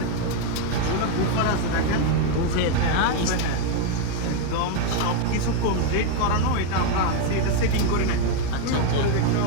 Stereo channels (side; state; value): both; different; correlation 0.02